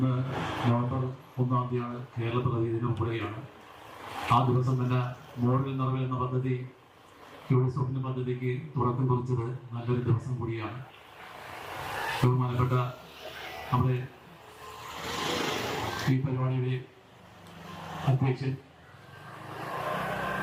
നവംബർ 1-ാം തീയതിയാണ് കേരള പ്രതിനിധി ദിനം ഉൾപ്പെടുകയാണ്. ആ ദിവസം തന്നെ മോഡൽ നിറവ് എന്ന പദ്ധതി സ്വപ്ന പദ്ധതിക്ക് തുടക്കം കുറിച്ചത് നല്ലൊരു ദിവസം കൂടിയാണ്. ബഹുമാനപ്പെട്ട നമ്മുടെ ഈ പരിപാടിയുടെ അധ്യക്ഷൻ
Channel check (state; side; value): identical; both; correlation 1.00